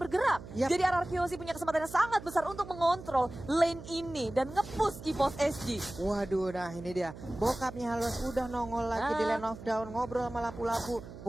bergerak. Yap. Jadi RRQC punya kesempatan yang sangat besar untuk mengontrol lane ini dan nge-push EVOS SG. Waduh, nah ini dia. Bokapnya Halos udah nongol lagi di Land of Dawn, ngobrol sama lapu-lapu.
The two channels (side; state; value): right; noise; hum, 14 dB below the sound